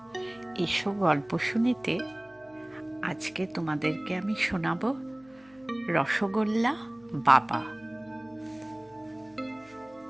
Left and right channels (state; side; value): noise; left; hum, 29 dB below the sound